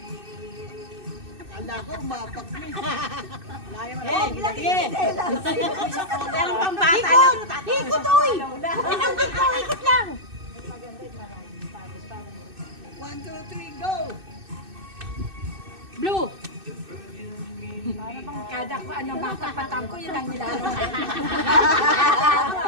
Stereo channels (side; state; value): left; late; 2.6 ms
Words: Akala ko, umapak na. Sige. Meron pang bata lang. Ikot, oy. Pinanggit ko, ikot lang. 1, 2, 3, go! Blue. Para bang kada ko ano matapatan ko, yun ang nilalaro.